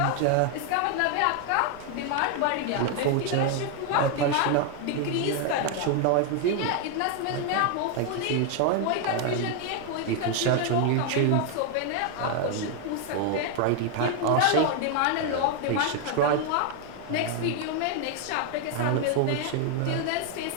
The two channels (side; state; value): both; different; correlation 0.00